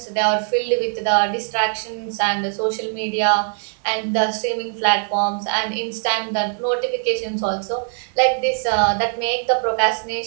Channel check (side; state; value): left; silent; 55 dB below the other